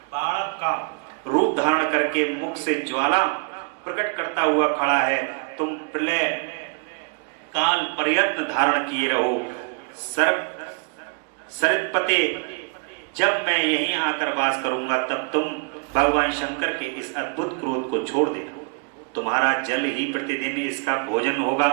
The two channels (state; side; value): quieter; left; 35.5 dB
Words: का रूप धारण करके मुख से ज्वाला प्रकट करता हुआ खड़ा है, तुम प्रलय काल प्रयत्न धारण किए रहो। सरपते, जब मैं यहीं आकर वास करूंगा तब तुम भगवान शंकर के इस अद्भुत क्रोध को छोड़ देना। तुम्हारा जल ही प्रतिदिन इसका भोजन होगा।